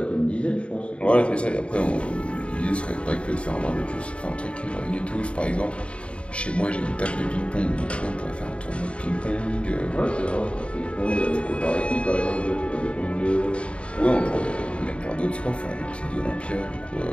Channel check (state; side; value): late; right; 0.059 ms